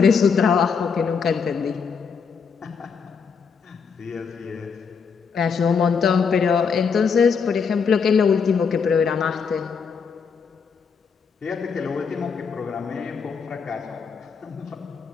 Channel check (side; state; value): right; quieter; 5.9 dB